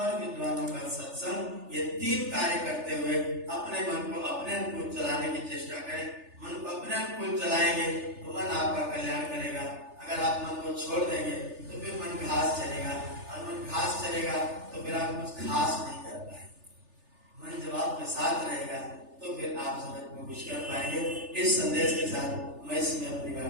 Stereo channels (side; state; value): left; late; 3.4 ms